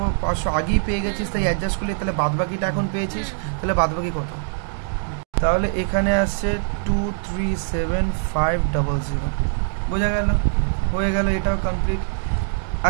আগেই পেয়ে গেছিস, তাই অ্যাডজাস্ট করলে তাহলে বাদবাকিটা এখন পেয়েছিস, তাহলে বাদবাকি কত, তাহলে এখানে আসছে 237,500, বোঝা গেল, হয়ে গেল, এটাও কমপ্লিট।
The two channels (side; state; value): left; silent; digital silence